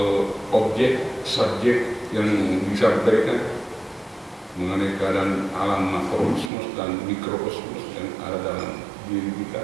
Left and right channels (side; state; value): left; drops out; at 6.5 s